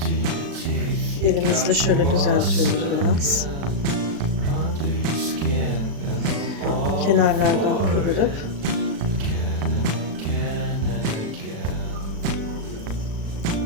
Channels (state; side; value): late; left; 36 ms